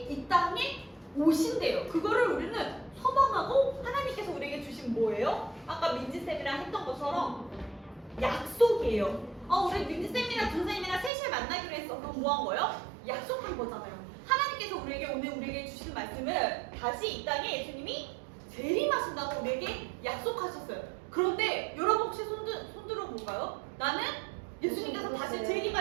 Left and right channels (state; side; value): drops out; left; at 11.1 s